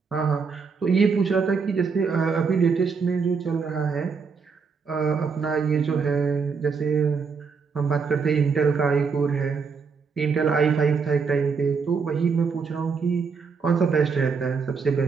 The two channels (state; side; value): quieter; left; 5.4 dB